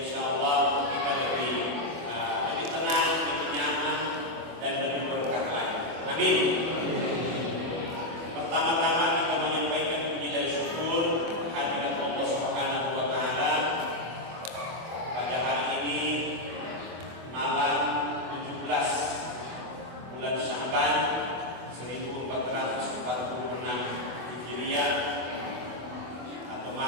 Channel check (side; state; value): left; late; 24 ms